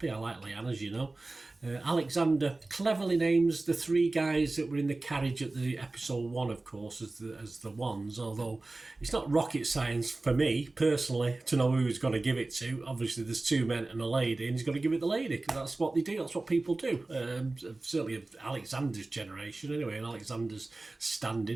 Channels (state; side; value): quieter; left; 3.1 dB